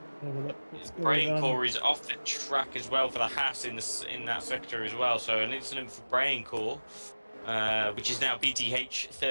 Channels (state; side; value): inverted; both; correlation -1.00